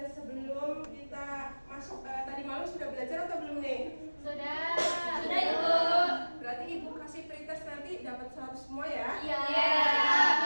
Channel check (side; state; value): both; inverted; correlation -1.00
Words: sebelum kita masuk tadi malam sudah belajar atau belum nih? Sudah, Ibu. Berarti Ibu kasih pretest nanti dapat 100 semua ya? Iya,